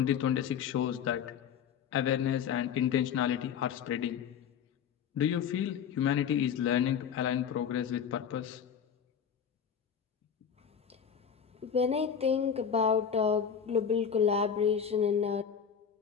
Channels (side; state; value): right; quieter; 7.7 dB